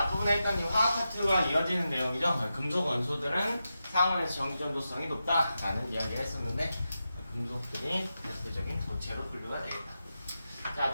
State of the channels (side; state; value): both; inverted; correlation -0.90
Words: 했던 이 화학 파트가 이어지는 내용이죠. 금속 원소들은 상온에서 전기 전도성이 높다라는 이야기를 했었는데, 금속들이 대표적인 고체로 분류가 되겠다. 자,